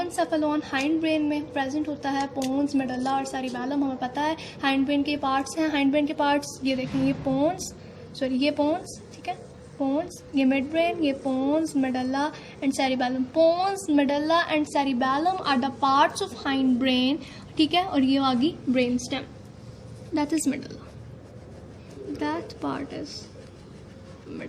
hind brain में प्रेजेंट होता है। पोन्स, मेडुला और सेरिबैलम हमें पता है हाइंड ब्रेन के पार्ट्स हैं। हाइंड ब्रेन के पार्ट्स ये देखें, ये पोन्स, ठीक है, पोन्स, ये मिड ब्रेन, ये pons, medulla and cerebellum. Pons, medulla and cerebellum are the parts of hindbrain, ठीक है, और ये आ गई brainstem, that is medulla, that part is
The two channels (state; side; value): identical; both; correlation 1.00